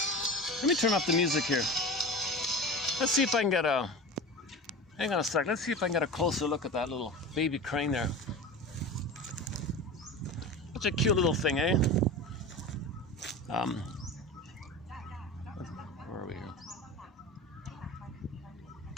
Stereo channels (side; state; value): both; normal; correlation 0.31